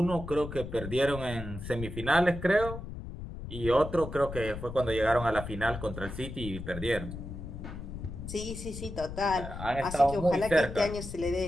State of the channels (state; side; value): noise; left; rumble, 9 dB below the sound